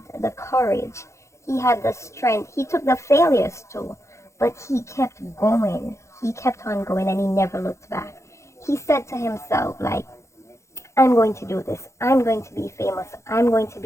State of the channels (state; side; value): late; right; 0.14 ms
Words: the courage. He had the strength. He took the failures too. But he kept going. He kept on going and he never looked back. He said to himself, like, I'm going to do this. I'm going to be famous. I'm going to